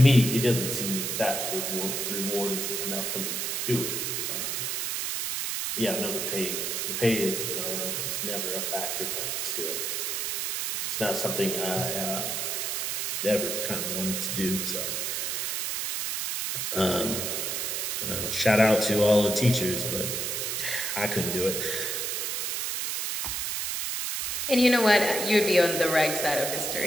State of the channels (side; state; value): right; noise; hiss, 1 dB below the sound